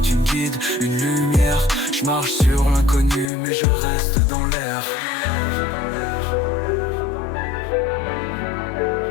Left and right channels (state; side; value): drops out; right; at 3.3 s